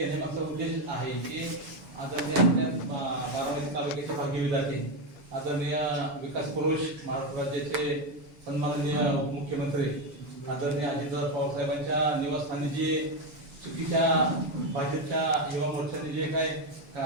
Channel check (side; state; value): left; late; 8.0 ms